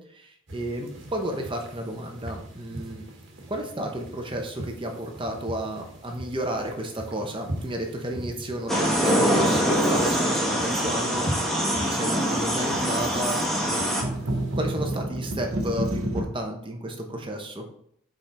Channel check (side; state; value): both; normal; correlation 0.53